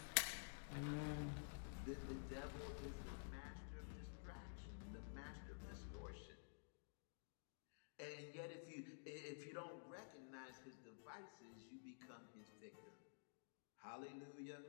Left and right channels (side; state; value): right; silent; digital silence